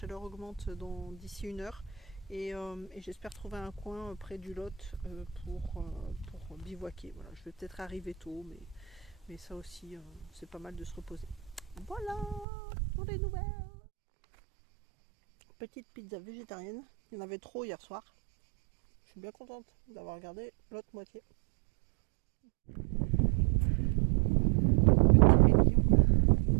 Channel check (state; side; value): drops out; left; at 12.5 s